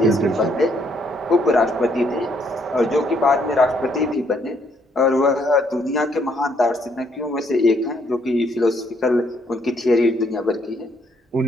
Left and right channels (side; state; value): both; normal; correlation 0.70